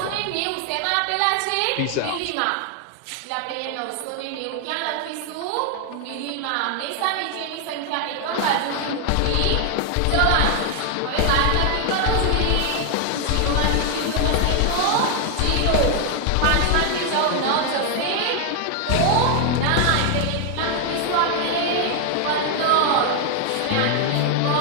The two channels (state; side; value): different; both; correlation 0.00